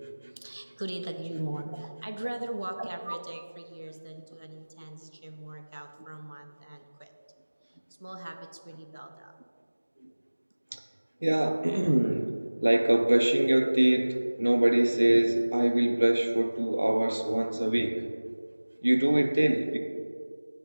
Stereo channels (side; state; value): both; inverted; correlation -1.00